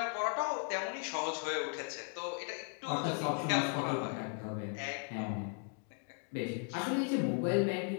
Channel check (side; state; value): right; quieter; 39.9 dB